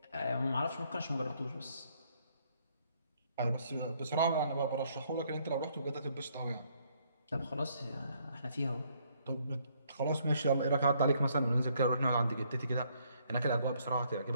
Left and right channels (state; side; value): inverted; both; correlation -0.69